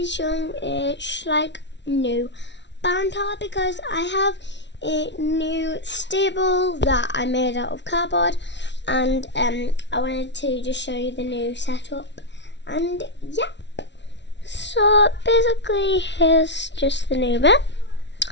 showing a shlich new barn tower because I have a new stable that I made out of cardboard, and I wanted to just show you the new setup. And yeah, so basically here's just the new bit.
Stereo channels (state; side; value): late; right; 0.51 ms